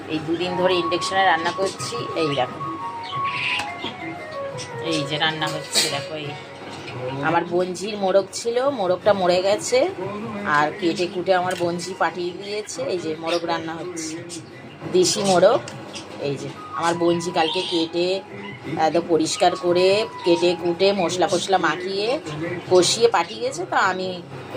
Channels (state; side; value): identical; both; correlation 1.00